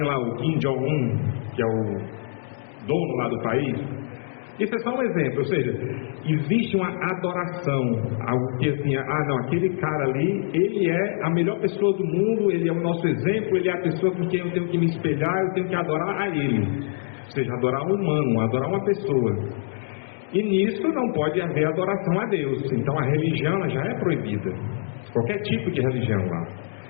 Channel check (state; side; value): silent; right; digital silence